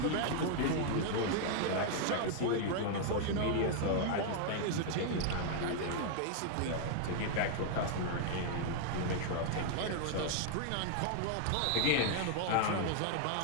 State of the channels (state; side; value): different; both; correlation 0.00